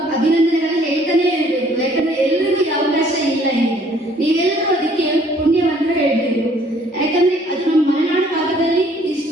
ಅಭಿನಂದನೆಗಳನ್ನ ಹೇಳ್ತಾನೆ ಇರಬೇಕು. ಯಾಕಂದ್ರೆ ಎಲ್ರಿಗೂ ಈ ಅವಕಾಶ ಇಲ್ಲ ಇದೆ. ನೀವೆಲ್ಲರೂ ಅದಕ್ಕೆ ಪುಣ್ಯವಂತ ಹೇಳ್ಬೇಕು. ಯಾಕಂದ್ರೆ ಅದು ನಮ್ಮ ಮಲೆನಾಡು ಭಾಗದಲ್ಲಿ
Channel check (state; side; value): normal; both; correlation 0.60